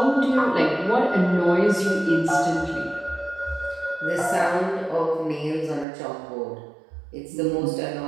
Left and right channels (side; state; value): left; drops out; at 5.9 s